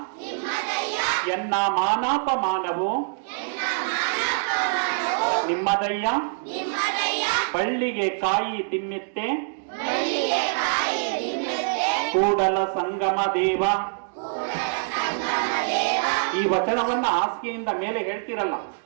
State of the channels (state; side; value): silent; left; digital silence